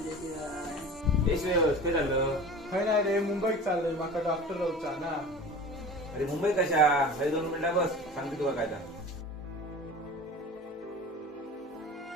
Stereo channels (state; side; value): normal; both; correlation 0.37